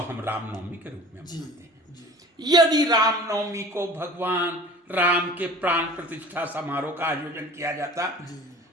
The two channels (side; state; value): both; normal; correlation 0.43